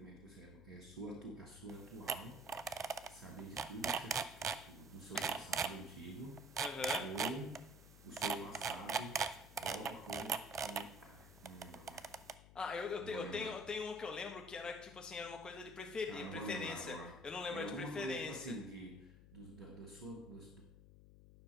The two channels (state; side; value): noise; left; hum, 18 dB below the sound